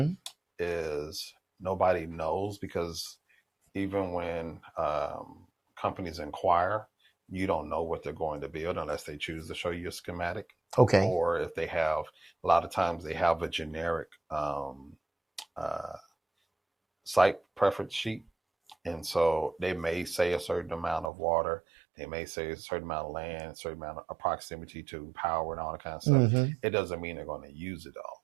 is nobody knows, because even when companies inquire, you don't know what they're going to build unless they choose to show you a schematic, Okay. or if they have, a lot of times they have a generic uh, site preference sheet. And so they may say a certain amount of water, they may say a certain amount of land, a certain amount of proximity to power and all that kind of stuff. Mm-hmm. It doesn't mean they're going to use it all.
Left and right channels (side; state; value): left; drops out; at 21.1 s